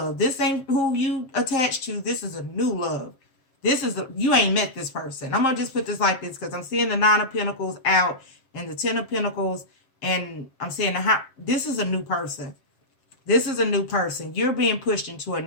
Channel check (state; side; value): late; right; 7.5 ms